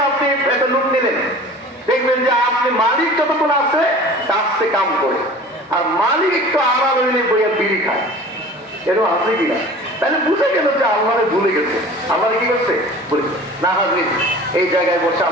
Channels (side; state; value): both; normal; correlation 0.42